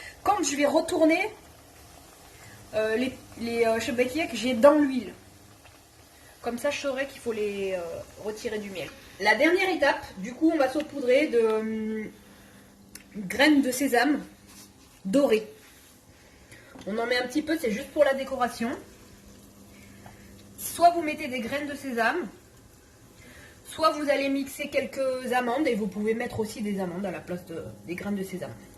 quand je vais retourner les chebekia que j'ai dans l'huile. Comme ça, je saurai qu'il faut les retirer du miel. La dernière étape, du coup, on va saupoudrer de graines de sésame dorées. On en met un petit peu, c'est juste pour la décoration. Soit vous mettez des graines de sésame, soit vous allez mixer quelques amandes et vous pouvez mettre aussi des amandes à la place des graines de sésame.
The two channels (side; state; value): both; identical; correlation 1.00